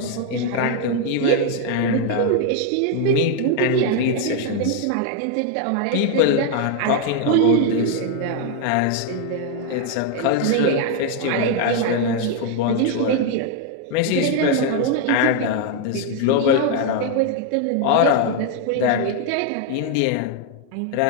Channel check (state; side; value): different; both; correlation 0.01